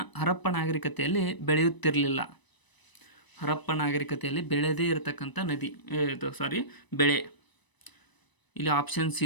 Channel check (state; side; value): late; right; 1.0 ms